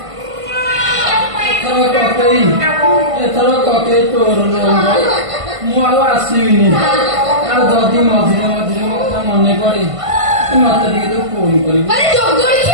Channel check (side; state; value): left; late; 1.5 ms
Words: ଏଥର ପକେଇ ତୋର ନୁହଁ ମୁଁ ଆଉ ଆସିବିନି ଆଉ ଯଦି ମଝିରେ ମଝିରେ ମୋ କଥା ମନେ ପଡେ ତୁ ମତେ ଟିକେ ତୁ ଫୋନ କରିବୁ ଆରେ